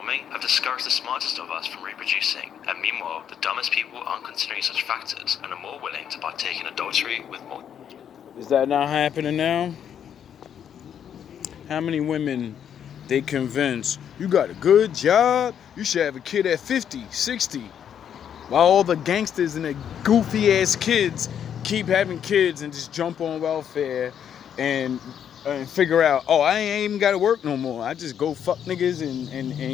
have discouraged the smartest of us from reproducing. And meanwhile, the dumbest people aren't considering such factors and are more willing to partake in adultery with more. Is that not happening now? How many women they convince you got a good job, you should have a kid at 50, 60, while all the gangsters and the goofy ass kids keep having kids and just jump on welfare and figure out, oh, I ain't even gotta work no more. I just go fuck niggas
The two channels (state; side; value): quieter; right; 8.8 dB